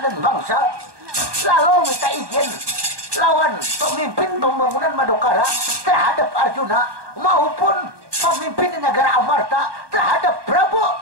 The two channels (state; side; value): late; left; 1.2 ms